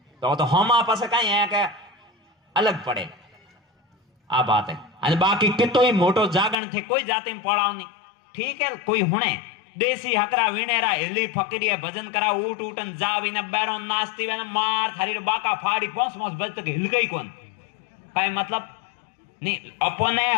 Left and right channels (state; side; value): drops out; right; at 6.6 s